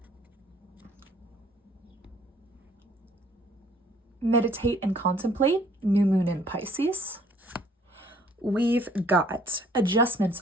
meditate and contemplate, new moon in Pisces. We've got adjustments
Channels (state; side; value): normal; both; correlation 0.59